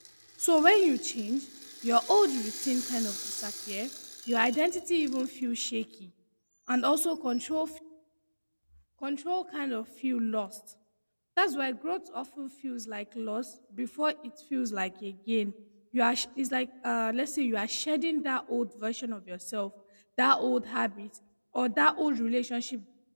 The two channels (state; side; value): inverted; both; correlation -1.00